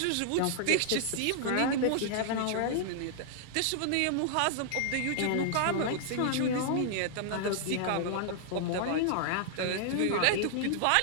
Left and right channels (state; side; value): different; both; correlation -0.01